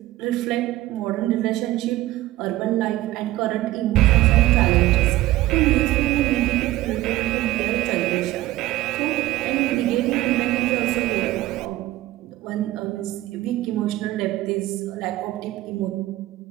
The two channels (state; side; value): quieter; left; 16.4 dB